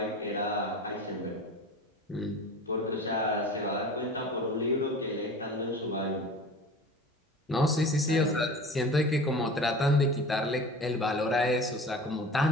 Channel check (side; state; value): both; normal; correlation 0.38